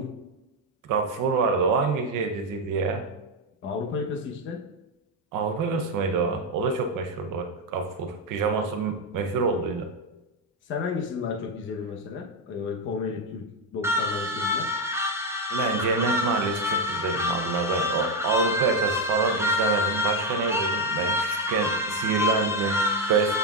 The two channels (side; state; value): both; normal; correlation 0.05